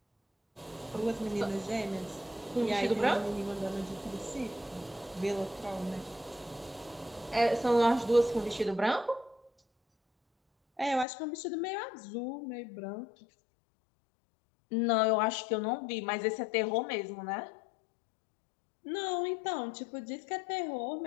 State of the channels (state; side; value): drops out; right; at 11.1 s